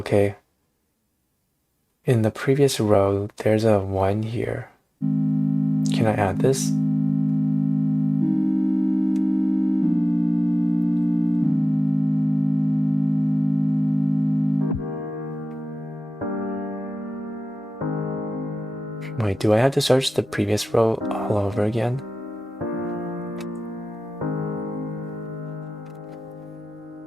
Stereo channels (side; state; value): both; normal; correlation 0.95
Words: In the previous row, there's a 1 here. Can I add this? Wait, do I have to search the previous row all over again?